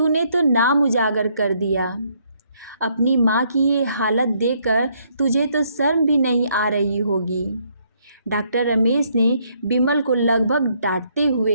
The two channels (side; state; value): both; inverted; correlation -0.70